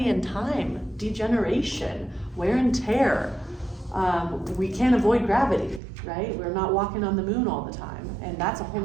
and time, degeneration, wear and tear. We can't avoid gravity, right? We're not walking on the moon all the time, and that's a whole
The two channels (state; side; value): drops out; left; at 5.8 s